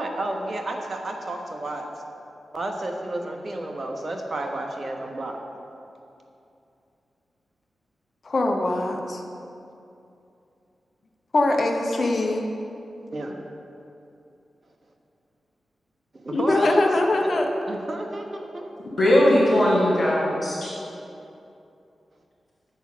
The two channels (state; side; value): normal; both; correlation 0.92